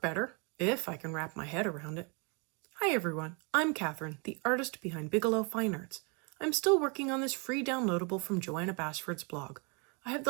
better, if I can wrap my head around it. Hi everyone, I'm Catherine, the artist behind Bigelow Fine Arts. I'm still working on this free downloadable from Joanna Basford's blog. I have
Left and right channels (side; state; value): left; quieter; 33.4 dB